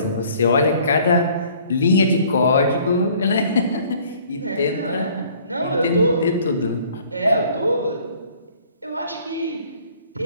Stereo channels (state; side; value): inverted; both; correlation -0.56